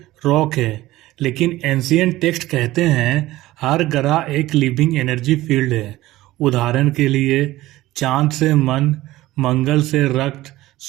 रॉक है, लेकिन एंशिएंट टेक्स्ट कहते हैं हर ग्रह एक लिविंग एनर्जी फील्ड है। उदाहरण के लिए, चांद से मन, मंगल से रक्त,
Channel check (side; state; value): left; quieter; 17.0 dB